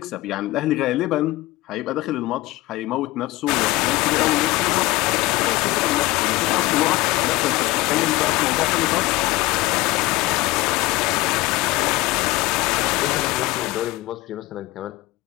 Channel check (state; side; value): quieter; right; 19.2 dB